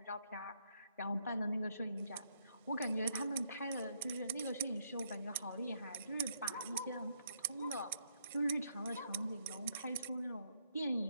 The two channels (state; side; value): inverted; both; correlation -0.74